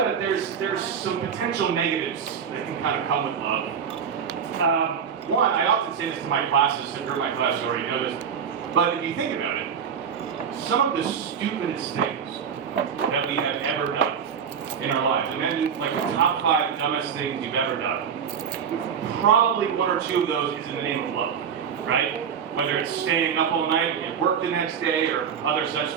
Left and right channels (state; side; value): quieter; left; 7.3 dB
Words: it, there's some potential negatives that can kind of come with love. One, I often say this to my classes, and you're in my class, you already know this, but if you think about it, some of the stupidest things that we have ever done in our lives, imagine like the top 5 dumbest things you've ever done, probably 1 or 2 of those is in the name of love, right? Whether it's staying up all night and work the next day or other such